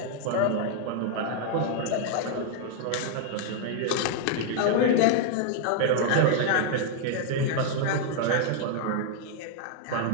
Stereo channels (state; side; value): different; both; correlation 0.00